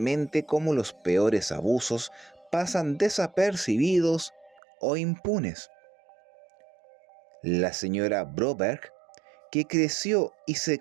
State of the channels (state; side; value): drops out; left; at 4.6 s